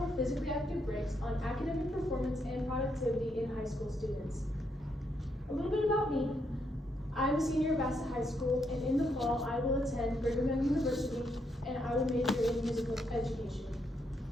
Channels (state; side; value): normal; both; correlation 0.78